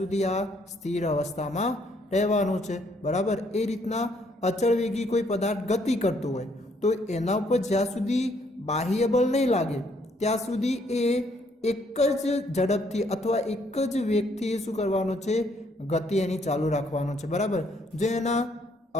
આ સ્થિર અવસ્થામાં રહેવાનું છે, બરાબર। એ રીતના અચળ વેગી કોઈ પદાર્થ ગતિ કરતો હોય તો એના ઉપર જ્યાં સુધી બાહ્ય બળ નહીં લાગે ત્યાં સુધી એ એક જ ઝડપથી અથવા એક જ વેગથી શું કરવાનું છે? ગતિ એની ચાલુ રાખવાનો છે, બરાબર। જો એના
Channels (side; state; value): both; normal; correlation 0.68